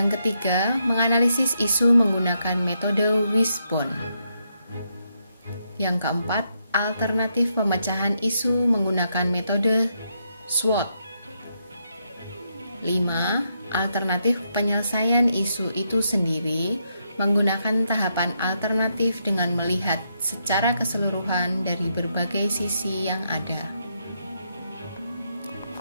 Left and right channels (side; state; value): both; inverted; correlation -0.79